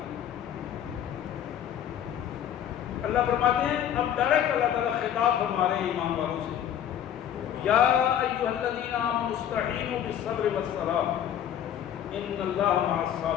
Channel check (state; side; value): quieter; right; 10.1 dB